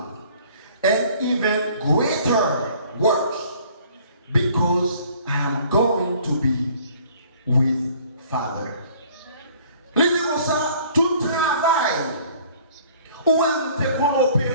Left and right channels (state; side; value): inverted; both; correlation -0.55